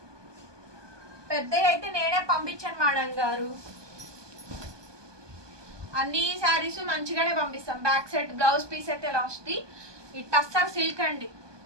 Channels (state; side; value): late; left; 1.2 ms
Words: పెద్దవి అయితే నేనే పంపించాను మేడం గారు. అన్ని శారీస్ మంచిగానే పంపిస్తాం. బ్యాక్ సైడ్ బ్లౌజ్ పీస్ అయితే ఇలా వస్తుంది. ఈ టస్సర్ సిల్క్ అండి,